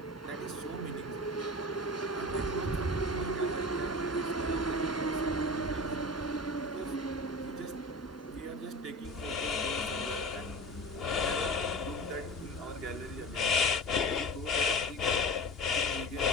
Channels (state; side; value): normal; both; correlation 0.32